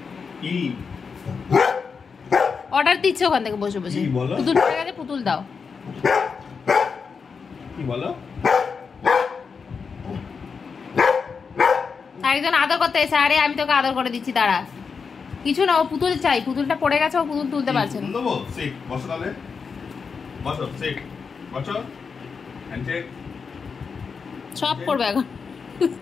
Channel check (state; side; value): quieter; right; 5.5 dB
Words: অর্ডার দিচ্ছে ওখান থেকে বসে বসে, পুতুল পড়ে গেছে পুতুল দাও। কি বলো? একজন আদর করতে এসে, আরে আমি তোকে আদর করে দিচ্ছি, দাঁড়া। কিছু না, ও পুতুল চাই, পুতুলটা পড়ে গেছে, ও পুতুল তুলতে পারছে না। বসো তাহলে, বসো, সিট, বসো, হ্যান্ডশেক সব করবে এখন।